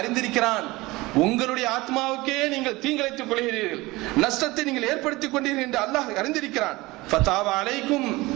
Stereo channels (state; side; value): quieter; left; 21.0 dB